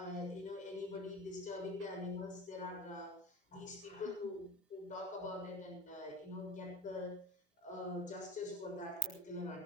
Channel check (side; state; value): both; normal; correlation 0.32